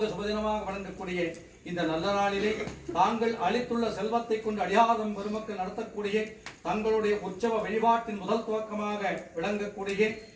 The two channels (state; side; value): identical; both; correlation 1.00